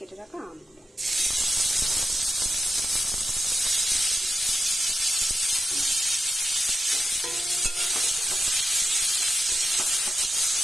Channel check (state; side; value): normal; both; correlation 0.90